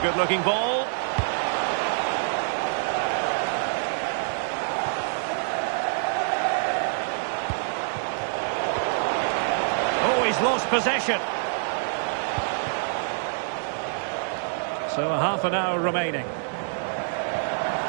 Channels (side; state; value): left; silent; 61 dB below the other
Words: ball. Oh, he's lost possession. So a half an hour remaining.